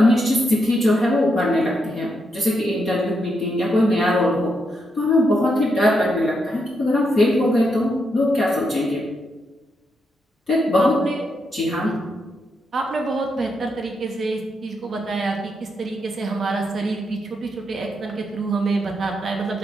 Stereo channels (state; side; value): normal; both; correlation 0.81